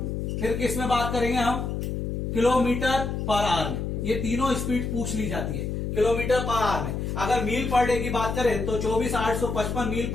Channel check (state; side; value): noise; left; hum, 3 dB below the sound